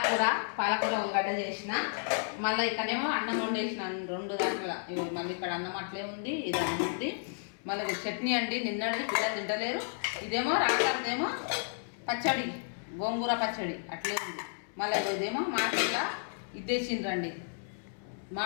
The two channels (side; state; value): right; silent; 56 dB below the other